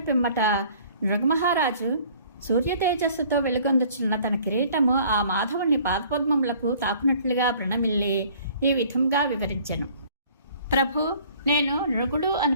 పిమ్మట నృగమహారాజు సూర్య తేజస్సుతో వెలుగొందుచున్న తన కిరీటము ఆ మాధవుని పాదపద్మములకు తాకునట్లుగా ప్రణమిల్లి ఈ విధంగా వివరించెను. ప్రభు, నేను నృగుడు అని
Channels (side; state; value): both; inverted; correlation -0.54